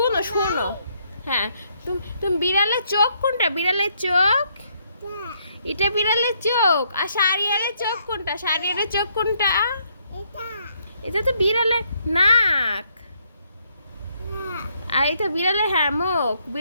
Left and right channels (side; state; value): both; inverted; correlation -0.72